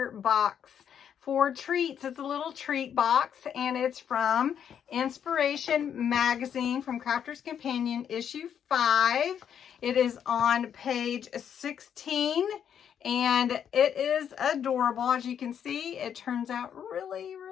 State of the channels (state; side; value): quieter; right; 8.6 dB